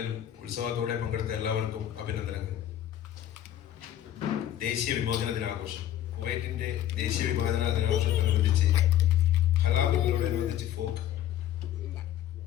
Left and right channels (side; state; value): right; quieter; 11.7 dB